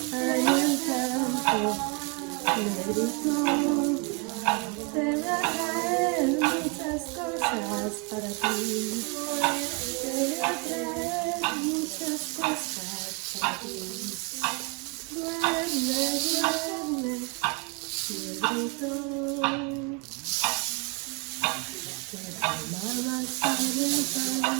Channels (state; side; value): quieter; left; 32.8 dB